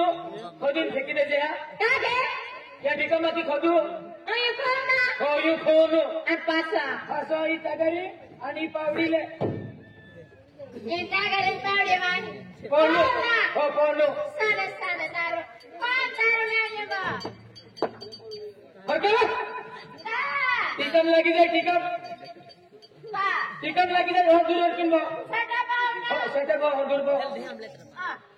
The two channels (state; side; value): identical; both; correlation 1.00